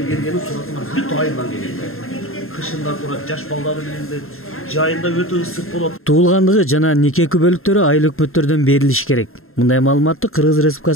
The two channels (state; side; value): late; right; 0.61 ms